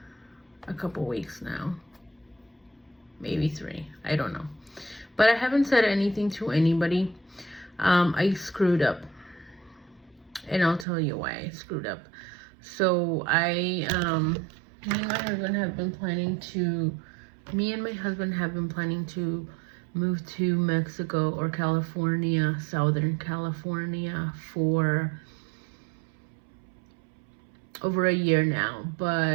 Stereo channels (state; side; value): drops out; left; at 10.9 s